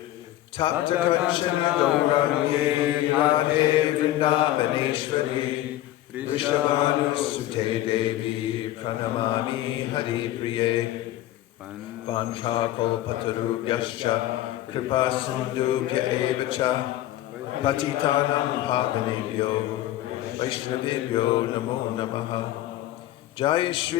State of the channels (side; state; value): right; quieter; 14.3 dB